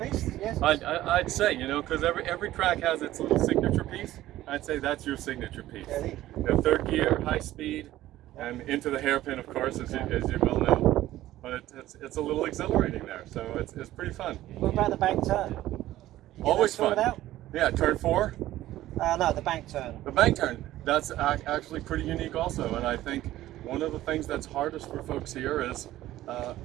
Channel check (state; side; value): quieter; left; 14.8 dB